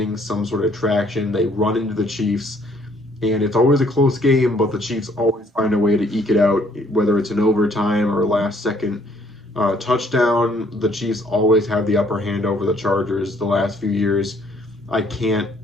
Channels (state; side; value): normal; both; correlation 0.64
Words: some sort of traction, they run into the Chiefs, and it's always a close game, but the Chiefs always find a way to eke it out, whether it's an overtime or last second touchdown. The Chiefs always have the upper hand over the Chargers the last few years. I can't